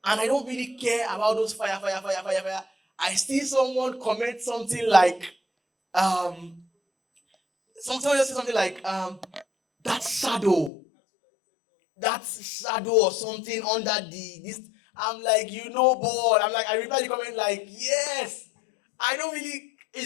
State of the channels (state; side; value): drops out; right; at 10.7 s